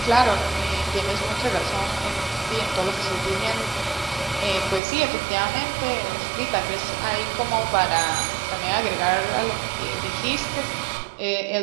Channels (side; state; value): left; drops out; at 4.8 s